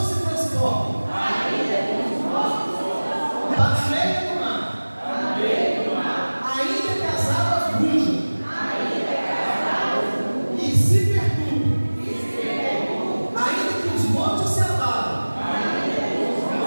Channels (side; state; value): both; inverted; correlation -1.00